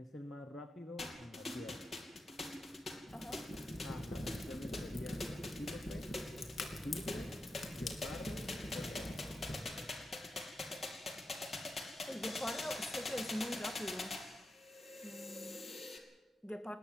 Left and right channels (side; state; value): both; normal; correlation 0.88